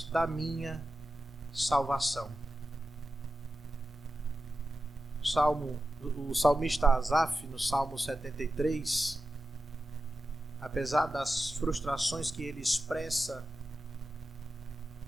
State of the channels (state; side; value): normal; both; correlation 0.91